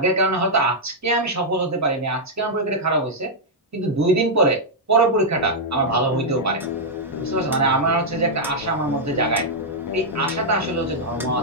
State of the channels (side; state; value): both; normal; correlation -0.05